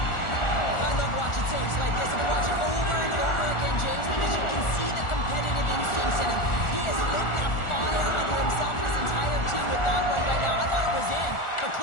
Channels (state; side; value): late; right; 1.4 ms